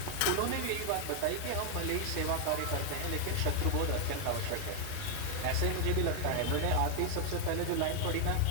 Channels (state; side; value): different; both; correlation 0.00